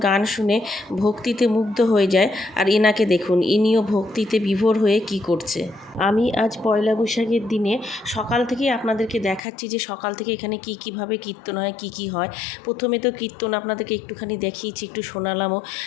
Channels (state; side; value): drops out; right; at 9.4 s